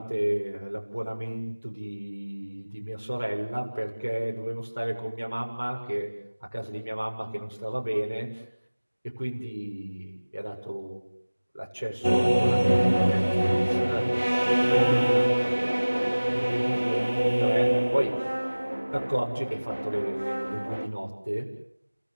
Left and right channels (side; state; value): both; inverted; correlation -1.00